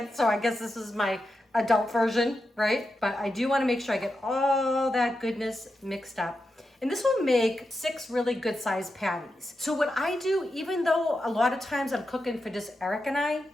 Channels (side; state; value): both; normal; correlation 0.88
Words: so I guess this is my adult version, right? But I do want to make sure I get all that goodness mixed up. And this will make 6 really good sized patties. So what I do, even though a lot of times I'm cooking for just Eric and I,